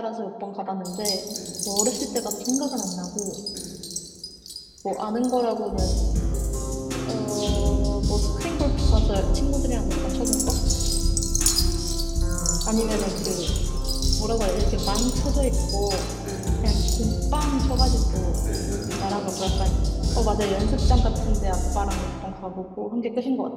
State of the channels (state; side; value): identical; both; correlation 1.00